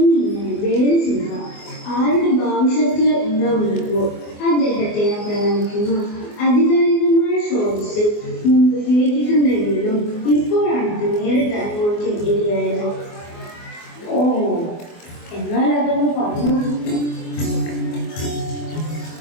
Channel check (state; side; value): late; right; 24 ms